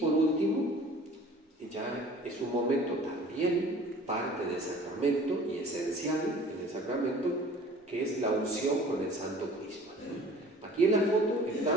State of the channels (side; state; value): both; normal; correlation 0.48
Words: último, ya es un momento también parte del sacramento y esencial en el sacramento, que es la unción con el Santo Crisma. Aquí en la foto